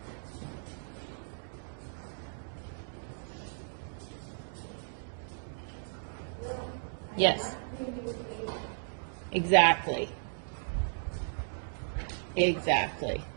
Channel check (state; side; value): silent; left; digital silence